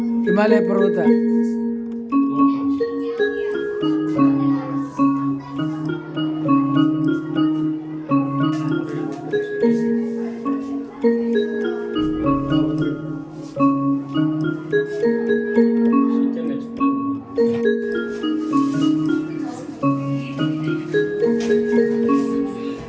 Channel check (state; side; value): identical; both; correlation 1.00